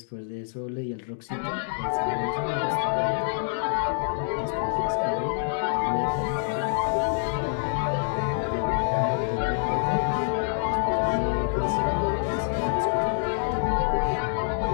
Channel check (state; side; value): silent; right; digital silence